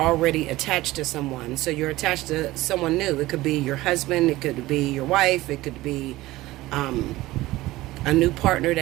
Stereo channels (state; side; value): quieter; left; 17.8 dB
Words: attached to someone. So you're attached to someone new. It could be your husband, it could be your wife, it could be a new partner